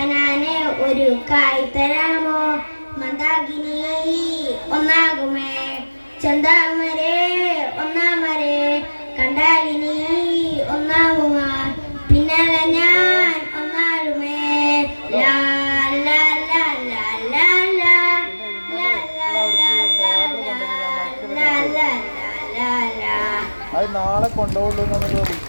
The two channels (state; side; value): inverted; both; correlation -1.00